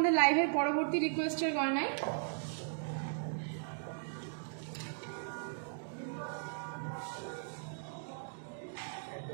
লাইভের পরবর্তী রিকোয়েস্টের গয়নায়।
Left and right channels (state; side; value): silent; left; digital silence